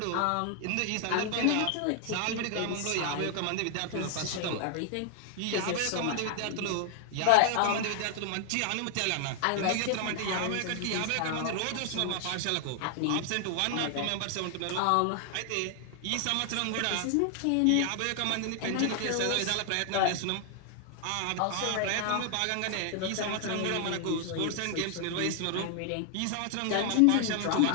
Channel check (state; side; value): different; both; correlation 0.00